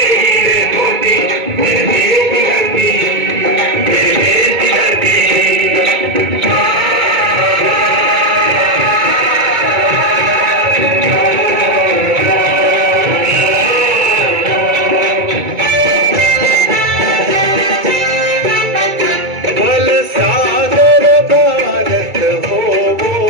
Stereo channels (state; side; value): late; left; 2.2 ms